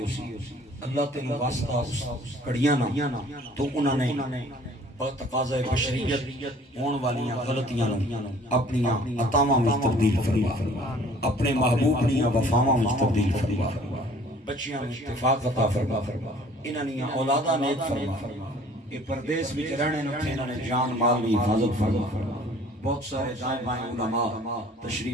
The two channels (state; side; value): normal; both; correlation 0.53